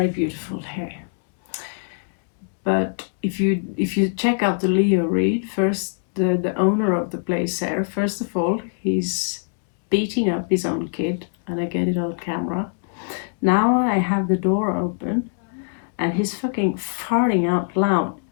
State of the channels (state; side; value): silent; right; digital silence